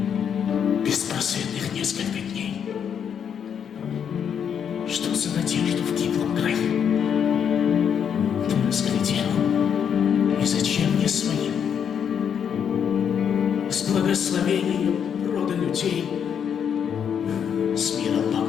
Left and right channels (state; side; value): quieter; right; 8.0 dB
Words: беспросветных несколько дней. Что за надежду в гиблом краю ты разглядел, и зачем мне своим? С благословением рода людей с миром